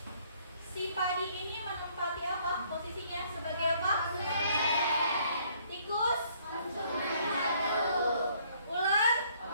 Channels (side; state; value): both; inverted; correlation -0.64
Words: Si padi ini menempati apa? Posisinya sebagai apa? Tikus konsumen 1. Ular